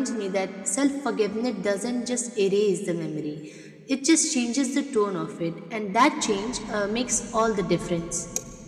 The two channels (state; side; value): identical; both; correlation 1.00